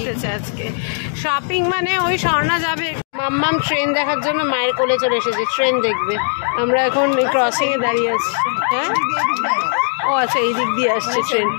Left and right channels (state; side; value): silent; right; 67 dB below the other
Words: আজকে। শপিং মানে ওই স্বর্ণা যাবে, মাম্মাম ট্রেন দেখার জন্য মায়ের কোলে চলে এসেছে, ট্রেন দেখবে। আমরা এখন এই ক্রসিংয়ে দাঁড়িয়ে আছি। হ্যাঁ, ও আচ্ছা, এই দিক দিয়ে আসছে ট্রেন।